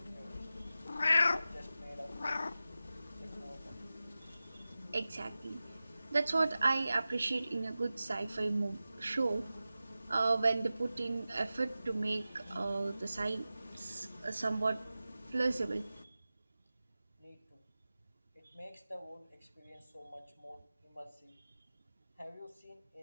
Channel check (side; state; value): both; inverted; correlation -0.95